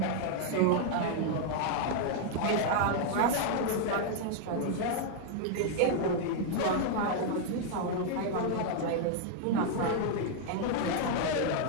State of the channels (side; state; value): both; different; correlation 0.00